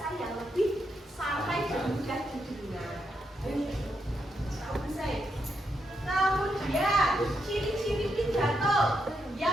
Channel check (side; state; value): both; normal; correlation 0.81